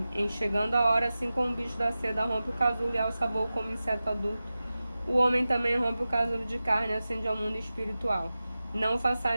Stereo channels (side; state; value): both; inverted; correlation -0.95